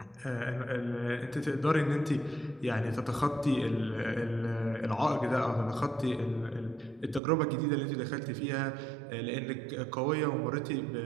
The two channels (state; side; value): drops out; left; at 7.2 s